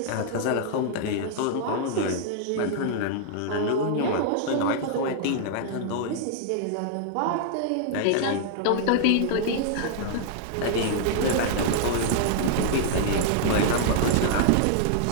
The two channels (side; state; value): both; different; correlation -0.01